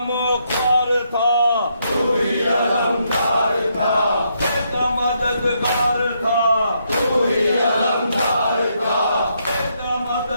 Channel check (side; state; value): both; inverted; correlation -0.77